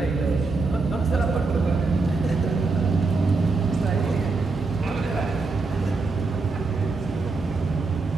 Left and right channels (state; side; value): quieter; left; 3.9 dB